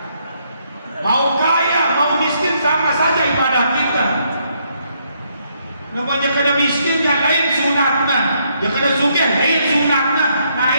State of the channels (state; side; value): inverted; both; correlation -0.73